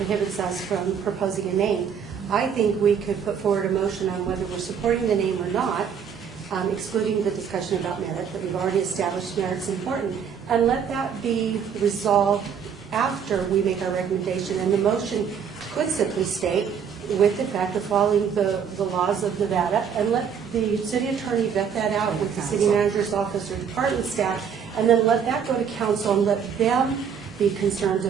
us from proposing a name. I think we could put forward a motion on whether we're supporting the name or not, excluding the discussion about merit, that we've already established merit's important, and let that be resolved after we make our recommendation. And the motion could simply state, with the fact of following the laws of Nevada, and let the city attorney vet that out with the city manager's office or department staff, and then let that go to council and let them be concerned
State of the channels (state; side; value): quieter; left; 7.2 dB